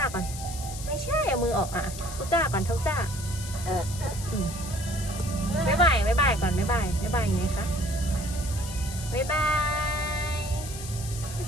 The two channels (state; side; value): noise; left; hiss, 11 dB below the sound